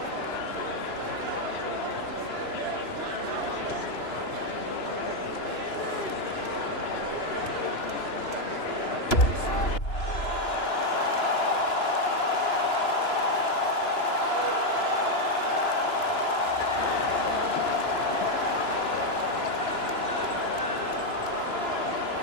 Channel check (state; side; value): late; right; 2.9 ms